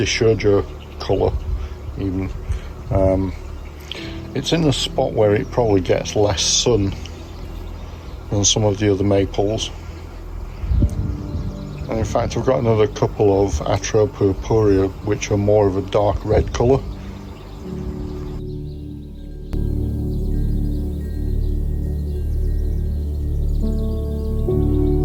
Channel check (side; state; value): both; identical; correlation 1.00